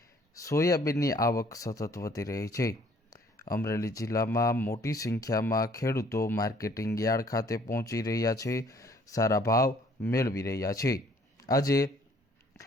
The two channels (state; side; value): normal; both; correlation 0.59